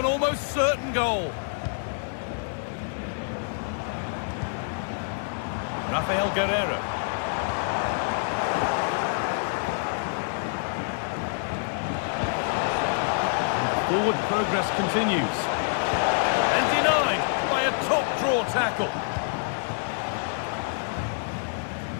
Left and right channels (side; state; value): right; silent; 57 dB below the other